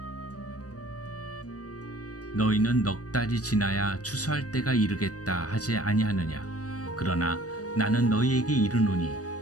너희는 넉 달이 지나야 추수할 때가 이르겠다 하지 아니하느냐. 그러나 나는 너희에게 이르노니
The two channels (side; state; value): right; late; 0.67 ms